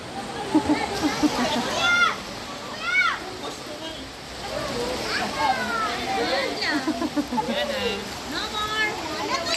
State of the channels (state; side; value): identical; both; correlation 1.00